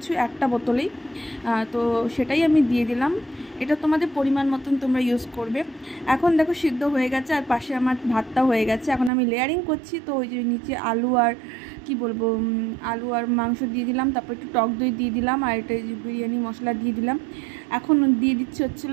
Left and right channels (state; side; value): drops out; left; at 9.1 s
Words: একটা বোতলেই। তো সেটাই আমি দিয়ে দিলাম। এটা তোমাদের পরিমাণ মতন তোমরা ইউজ করবে। এখন দেখো সিদ্ধ হয়ে গেছে আর পাশে আমার ভাতটা হয়ে গেছে। এখন আমি লেয়ারিং করছি। তো ওই যে নিচে আলু আর কি বলবো আলু আর মাংস দিয়ে দিলাম, তারপর একটু টক দই দিয়ে দিলাম, আর এটা যে বিরিয়ানি মশলা দিয়ে দিলাম। এখন দিয়ে দিচ্ছি